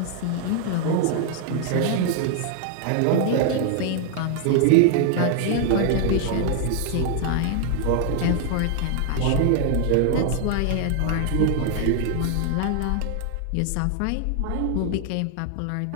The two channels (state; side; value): different; both; correlation 0.00